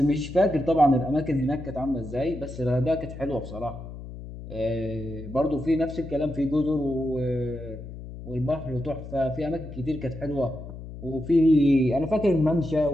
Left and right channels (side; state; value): left; noise; hum, 12 dB below the sound